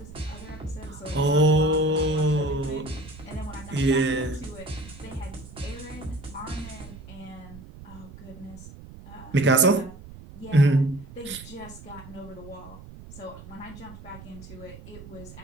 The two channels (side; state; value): right; noise; rumble, 16 dB below the sound